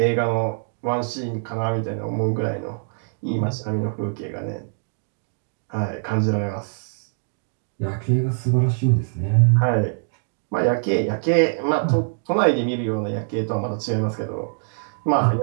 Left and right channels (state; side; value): silent; left; digital silence